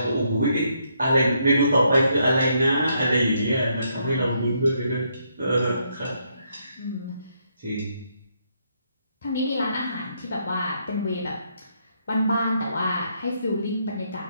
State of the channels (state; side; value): inverted; both; correlation -0.75